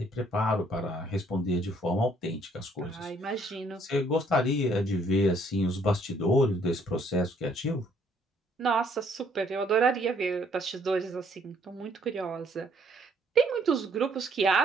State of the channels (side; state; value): both; normal; correlation 0.65